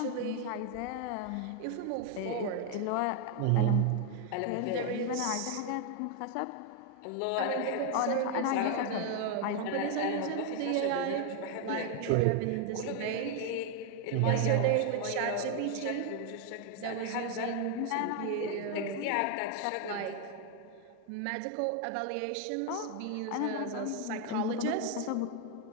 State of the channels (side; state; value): both; different; correlation 0.01